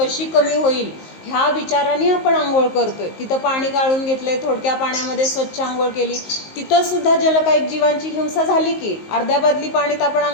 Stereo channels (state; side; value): late; right; 19 ms